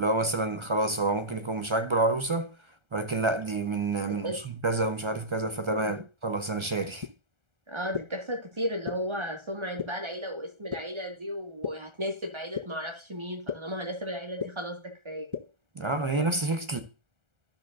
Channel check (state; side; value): late; left; 1.3 ms